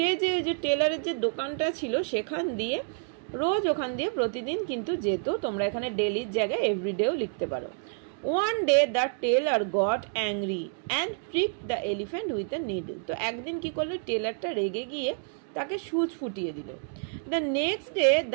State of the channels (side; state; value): left; silent; 59 dB below the other